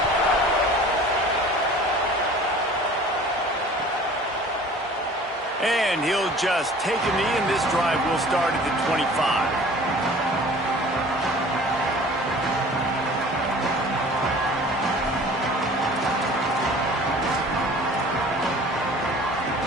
And he'll just take a knee, and this drive will start at the 25.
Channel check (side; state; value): both; normal; correlation 0.46